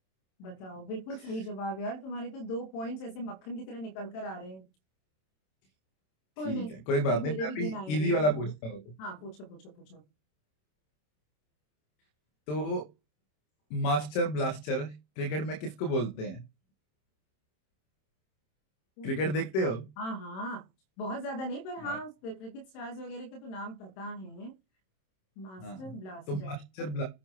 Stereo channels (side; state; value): right; late; 27 ms